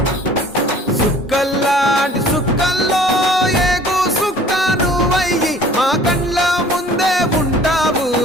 సుక్కల్లాంటి సుక్కల్లో ఏగు సుక్క నువ్వయ్యి మా కండ్ల ముందే ఉంటావు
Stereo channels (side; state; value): both; normal; correlation 0.50